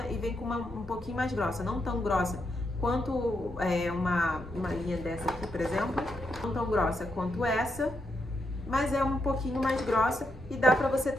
e vem com uma um pouquinho mais grossa, não tão grossa quanto uma linha dessa aqui, por exemplo, não tão grossa quanto essa, mas é um pouquinho mais grossa e dá para você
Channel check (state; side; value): normal; both; correlation 0.81